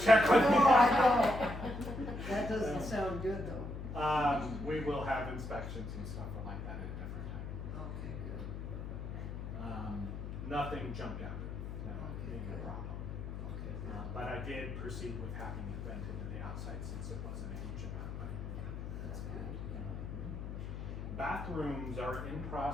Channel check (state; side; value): noise; left; hum, 6 dB below the sound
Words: with me? No, I don't. That doesn't sound good though. We will have inspections and stuff like that at a different time. Okay, good. Nothing jumped out at me, no, Okay, big good. problem. Okay, good. But I did proceed with having it vented to the outside since it wasn't a huge amount, but. That's good. Bathrooms are in